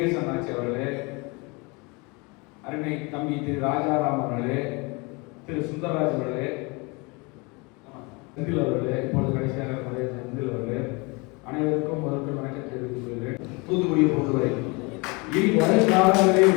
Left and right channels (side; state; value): right; quieter; 28.2 dB